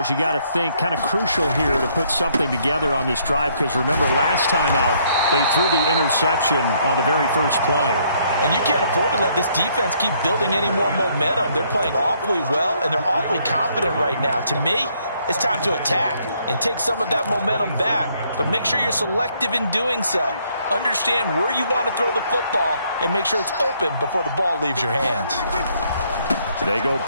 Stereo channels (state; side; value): inverted; both; correlation -0.68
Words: you got to think kind of crucial here to put something together on this drive, because remember last time out they threw the interception on the very first play. And you can't afford to let this defense keep building any more momentum. They're playing awfully well, and they're awfully confident right now. To me, it's time to attack and take some of that momentum back. But make sure you're selective in doing so. Understand where you want to throw the football and make sure it's open before the ball leaves your hands. They go